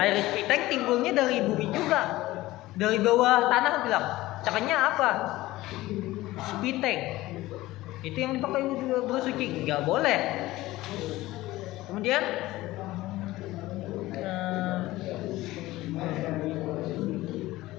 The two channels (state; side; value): quieter; right; 17.7 dB